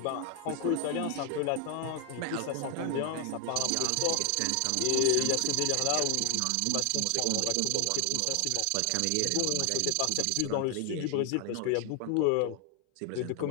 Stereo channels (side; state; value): both; different; correlation 0.00